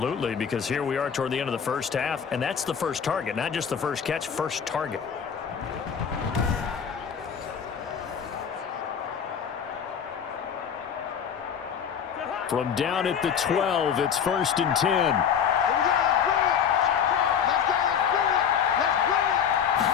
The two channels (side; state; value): right; quieter; 7.6 dB